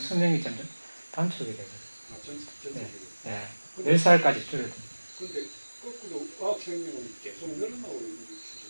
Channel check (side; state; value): both; inverted; correlation -1.00